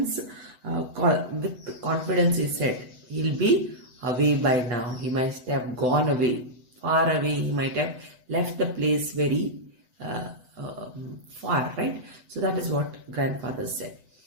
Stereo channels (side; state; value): left; late; 8.0 ms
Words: with confidence he said, he'll be away by now. He must have gone away, far away. He might have left the place very far, right? So that is what grandfather said.